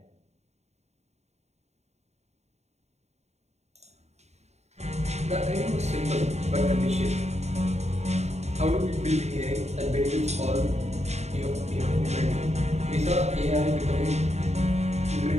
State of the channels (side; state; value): left; late; 0.32 ms